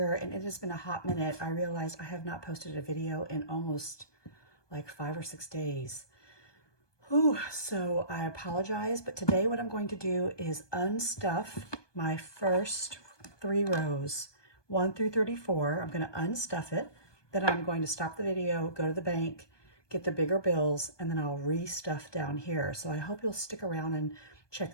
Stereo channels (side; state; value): right; late; 1.2 ms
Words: and it has been a hot minute. I realized I have not posted a video in almost like 5 or 6 days. Whew, so I apologize, but today what I'm going to do is unstuff my first 3 rows, 1 through 34. I'm going to unstuff it, then I'm going to stop the video, go to the bank, get the bigger bills, and then I'll restuff down here. So I hope you'll stick around and check